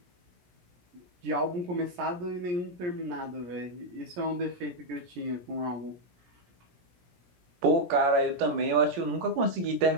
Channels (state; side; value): late; left; 17 ms